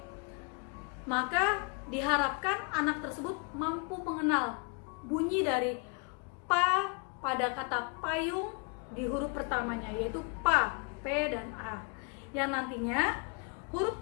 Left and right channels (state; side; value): quieter; right; 35.2 dB